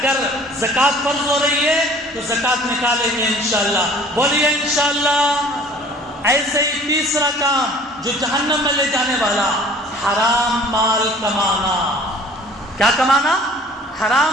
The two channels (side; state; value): both; normal; correlation 0.50